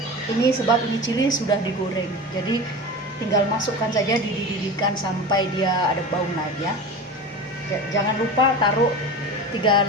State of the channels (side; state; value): both; normal; correlation 0.30